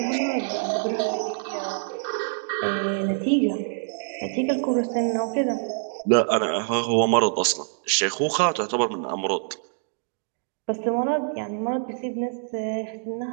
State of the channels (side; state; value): left; silent; digital silence